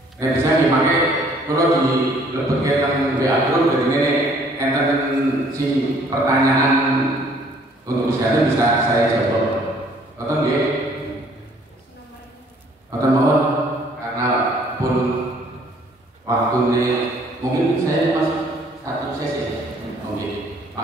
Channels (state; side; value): normal; both; correlation 0.59